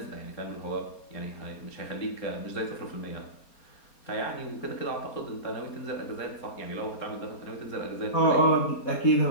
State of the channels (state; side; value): late; right; 4.3 ms